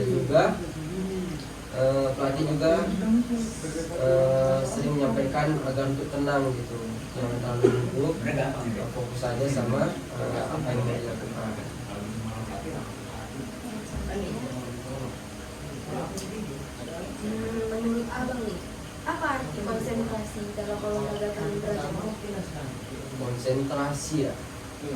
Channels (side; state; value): both; identical; correlation 1.00